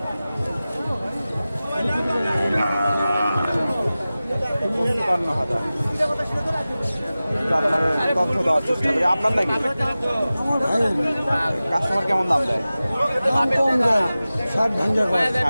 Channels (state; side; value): inverted; both; correlation -0.96